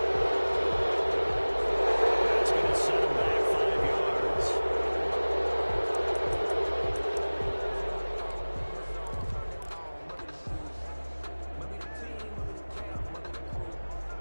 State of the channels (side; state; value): both; inverted; correlation -1.00